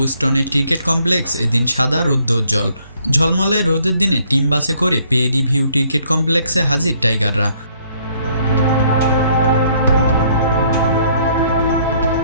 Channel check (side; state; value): both; inverted; correlation -0.65